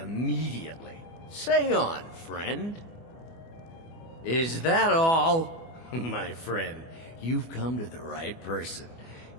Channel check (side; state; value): right; late; 24 ms